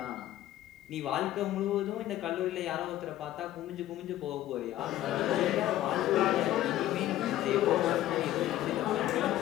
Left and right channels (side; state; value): right; quieter; 13.7 dB